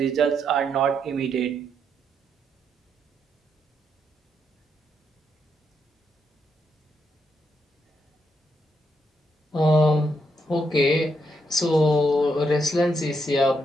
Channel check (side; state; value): both; normal; correlation 0.79